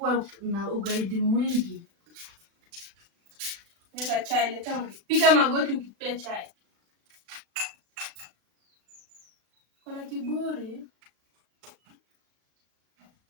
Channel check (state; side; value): late; left; 36 ms